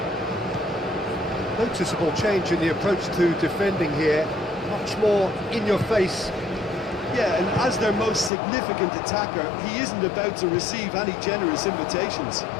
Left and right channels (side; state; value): right; drops out; at 8.3 s